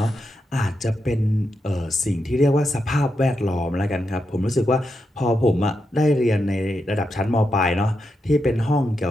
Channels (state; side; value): normal; both; correlation 0.85